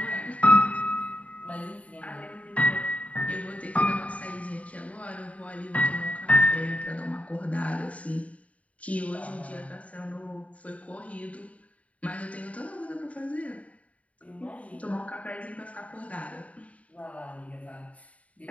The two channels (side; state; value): right; late; 0.067 ms